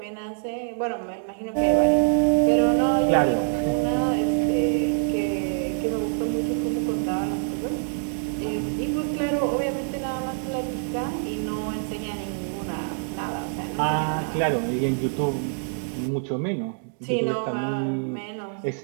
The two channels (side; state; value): left; silent; digital silence